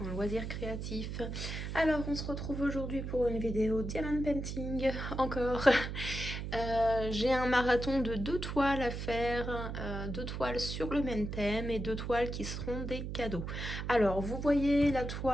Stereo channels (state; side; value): noise; right; hum, 5 dB below the sound